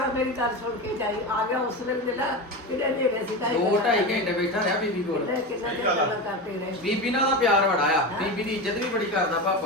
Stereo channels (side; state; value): both; normal; correlation 0.22